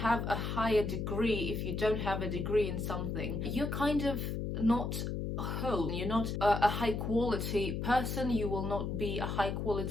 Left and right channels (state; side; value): noise; left; hum, 2 dB below the sound